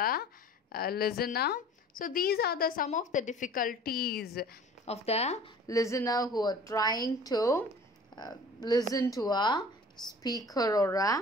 listener. So these are some of the difficulties of the listener who are trying to listen to a speaker or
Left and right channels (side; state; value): both; normal; correlation 0.46